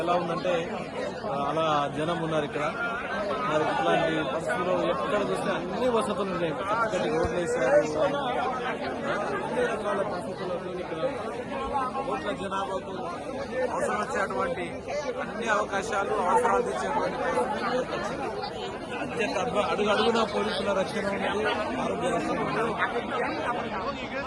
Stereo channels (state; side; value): identical; both; correlation 1.00